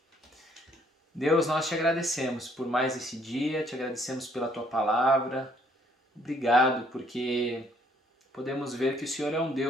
Deus, nós te agradecemos por mais esse dia, te agradecemos pela tua palavra. Obrigado porque podemos ver que o Senhor é um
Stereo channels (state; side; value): normal; both; correlation 0.65